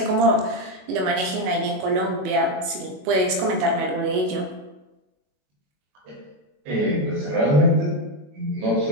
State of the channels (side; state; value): left; late; 22 ms